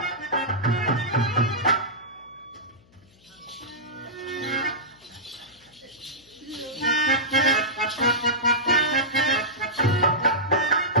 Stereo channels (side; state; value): left; noise; hum, 30 dB below the sound